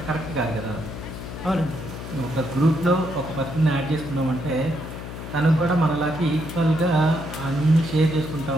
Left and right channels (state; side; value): noise; left; hum, 10 dB below the sound